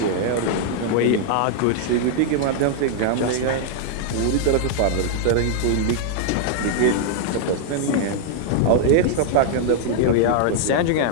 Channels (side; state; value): both; different; correlation -0.01